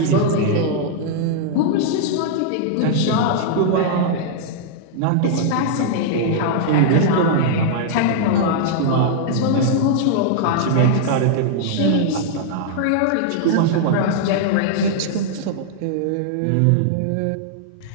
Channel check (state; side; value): different; both; correlation -0.01